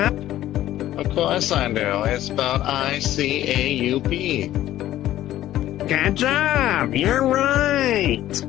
Of course I do. It's spelled I-C-A-U-P. Good job. You're right.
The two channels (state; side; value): quieter; right; 13.6 dB